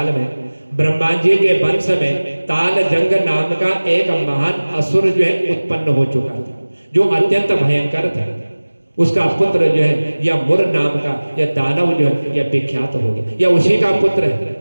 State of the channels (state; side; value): inverted; both; correlation -1.00